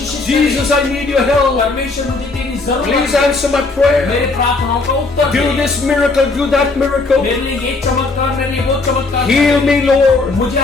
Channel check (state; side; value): quieter; right; 3.6 dB